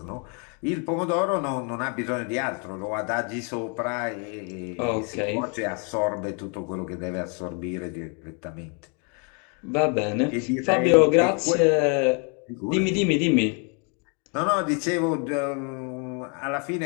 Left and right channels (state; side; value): quieter; right; 36.6 dB